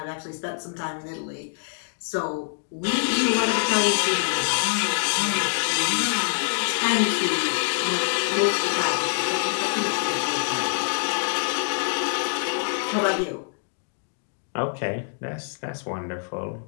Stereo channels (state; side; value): silent; right; digital silence